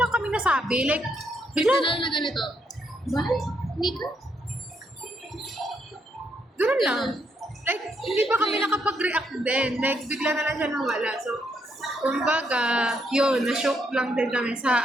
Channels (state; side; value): normal; both; correlation 0.76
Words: kami nasabi. Like, Bigla bigla. na ganito. Val? Nika? Ganun lang. Like, hindi pa kami nakapag-react din. Like, bigla na lang siya nawala. So, kumbaga, yun, na-shock lang din kami